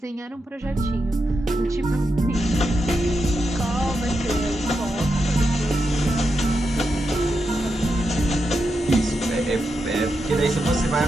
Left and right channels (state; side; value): normal; both; correlation 0.86